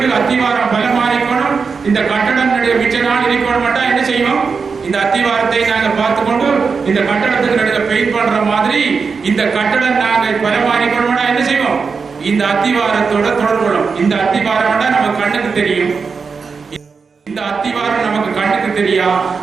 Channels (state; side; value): quieter; left; 5.2 dB